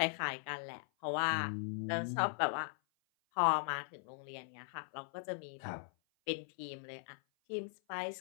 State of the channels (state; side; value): silent; right; 52 dB below the other